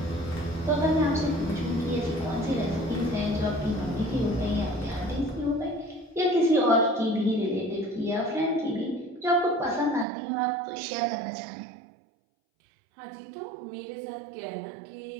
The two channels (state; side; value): drops out; left; at 10.1 s